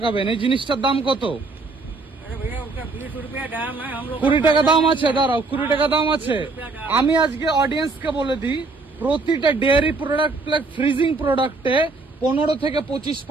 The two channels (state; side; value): quieter; left; 3.6 dB